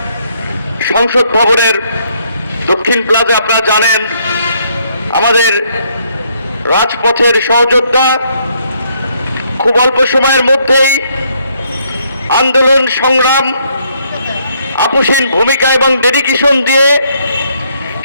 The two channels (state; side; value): inverted; both; correlation -0.70